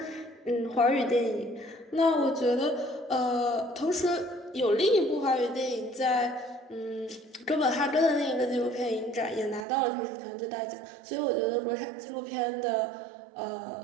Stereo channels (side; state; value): left; drops out; at 9.7 s